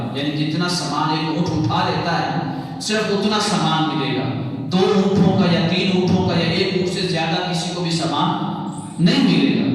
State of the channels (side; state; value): both; identical; correlation 1.00